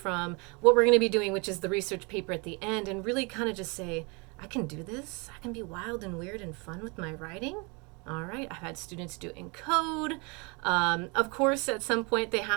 what we're going to be doing, which is the research paper at the end, and really kind of just say, I can do this. I can be wild and weird and fun with my writing. All right, I've had students do it in code. Of course, at some point they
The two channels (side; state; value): left; quieter; 30.6 dB